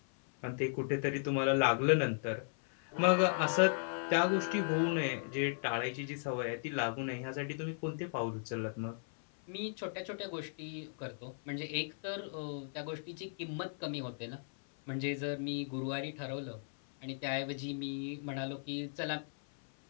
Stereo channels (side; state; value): right; silent; 54 dB below the other